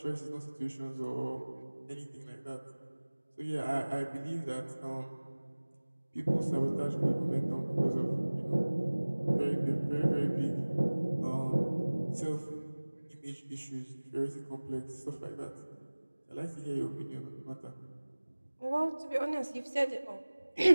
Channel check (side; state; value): both; inverted; correlation -1.00